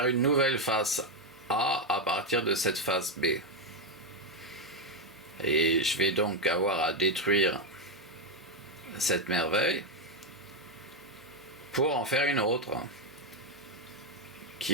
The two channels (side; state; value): both; normal; correlation 0.04